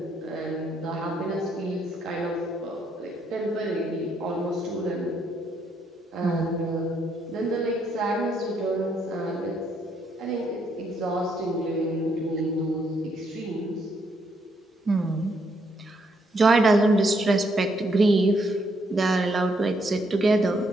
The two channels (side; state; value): both; normal; correlation 0.74